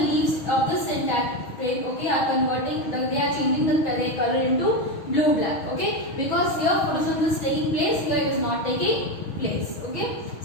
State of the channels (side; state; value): right; late; 6.3 ms